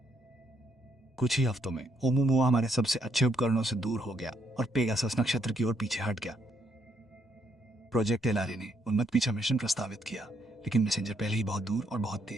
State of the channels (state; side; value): normal; both; correlation 0.73